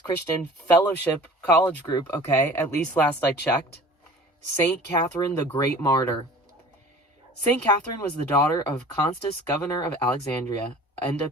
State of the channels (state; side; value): normal; both; correlation 0.44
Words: Fellowship College Group, okay? At least last I checked. Saint Katherine, the Great Martyr. Saint Katherine was the daughter of Constans, governor of Alexandria, and a